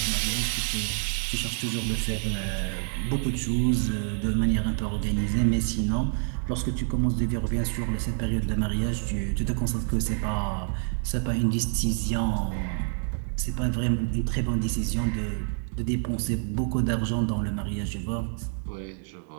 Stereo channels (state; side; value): silent; left; 60 dB below the other